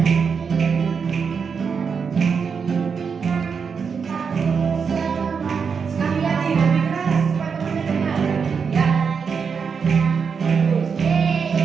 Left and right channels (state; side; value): quieter; left; 6.0 dB